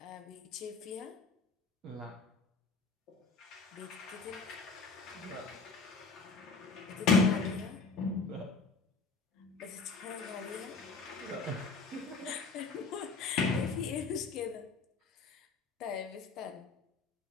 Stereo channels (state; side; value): quieter; right; 4.3 dB